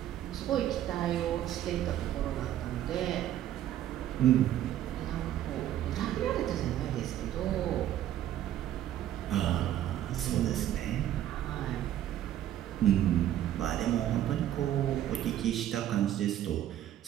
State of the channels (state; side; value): quieter; left; 12.0 dB